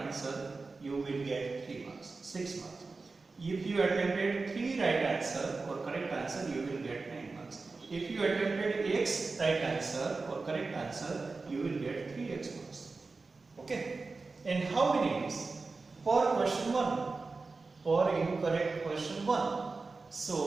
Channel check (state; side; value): quieter; left; 3.9 dB